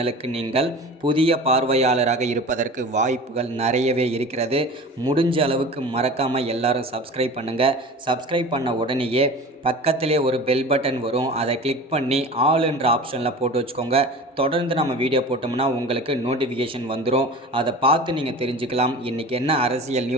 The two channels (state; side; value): normal; both; correlation 0.37